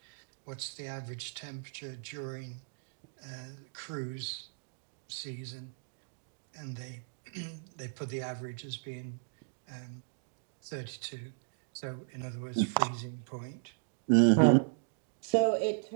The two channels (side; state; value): left; silent; digital silence